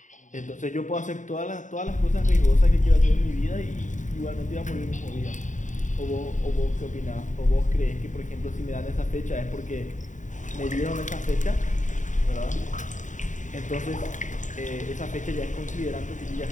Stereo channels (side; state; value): right; late; 0.36 ms